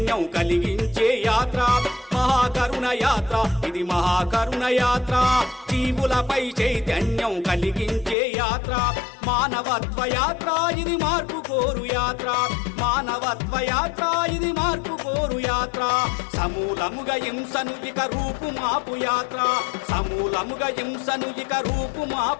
కలిగించే యాత్ర మహాకరుణ యాత్ర ఇది మహాకరుణ యాత్ర జీవులపై చైతన్యం కలిగించే యాత్ర మానవత్వ యాత్ర ఇది మార్పు కోరు యాత్ర మానవత్వ యాత్ర ఇది మార్పు కోరు యాత్ర సమూలముగా హింసను ఇక రూపు మాపు యాత్ర సమూలముగా హింసను ఇక రూపు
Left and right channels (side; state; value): right; drops out; at 8.2 s